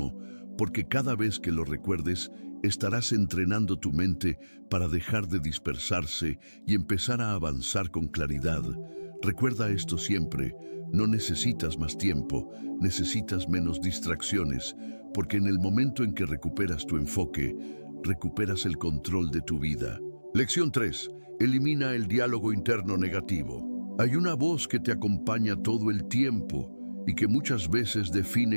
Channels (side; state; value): both; inverted; correlation -1.00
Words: porque cada vez que lo recuerdes, estarás entrenando tu mente para dejar de dispersarse y empezar a avanzar con claridad. Recuerda esto siempre: no necesitas más tiempo, necesitas menos distracciones, porque en el momento en que recuperas tu enfoque, recuperas el control de tu vida. Lección 3. Elimina el diálogo interno negativo. Hay una voz que te acompaña todo el tiempo y que muchas veces